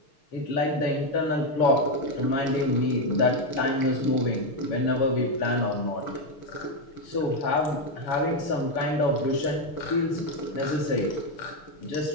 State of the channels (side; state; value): right; late; 6.5 ms